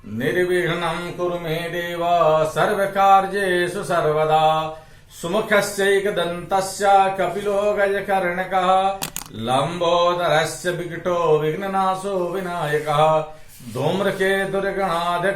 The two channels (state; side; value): identical; both; correlation 1.00